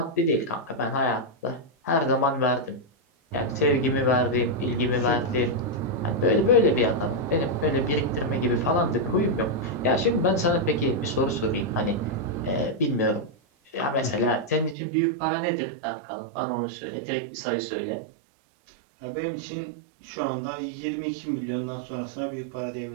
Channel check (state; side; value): drops out; left; at 14.8 s